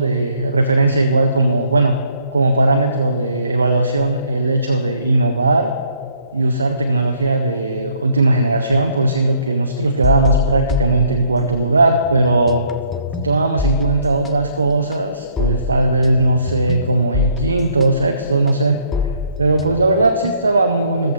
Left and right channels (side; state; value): both; inverted; correlation -0.65